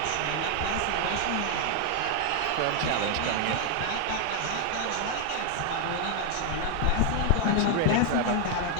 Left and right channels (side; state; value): both; different; correlation 0.00